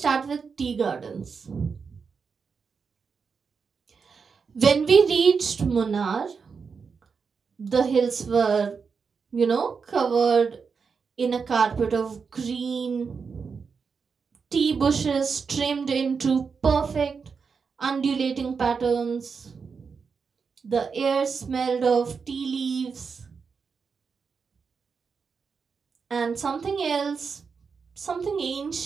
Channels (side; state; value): left; quieter; 5.5 dB